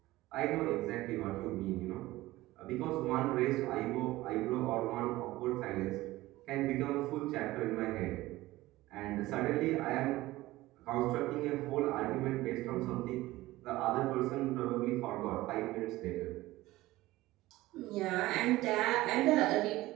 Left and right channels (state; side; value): quieter; left; 17.8 dB